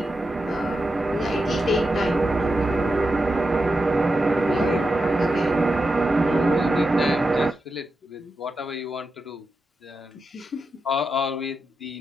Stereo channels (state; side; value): normal; both; correlation 0.88